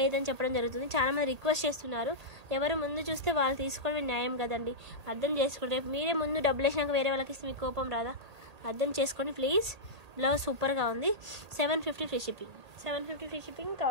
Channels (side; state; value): left; late; 1.8 ms